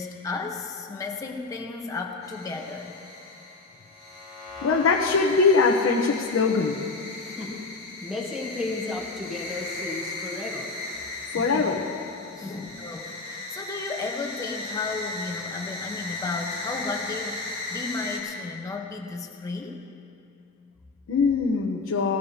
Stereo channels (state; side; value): quieter; right; 3.8 dB